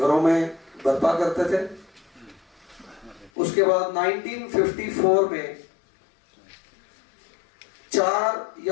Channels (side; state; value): right; drops out; at 3.3 s